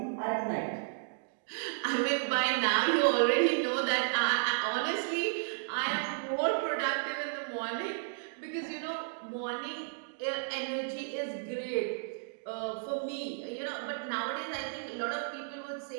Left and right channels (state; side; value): silent; left; digital silence